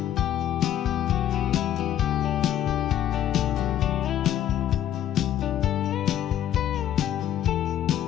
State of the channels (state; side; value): quieter; right; 11.2 dB